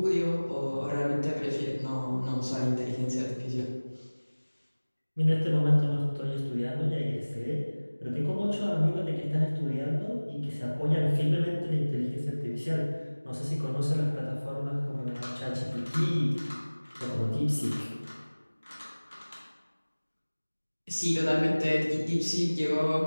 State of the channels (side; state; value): both; inverted; correlation -1.00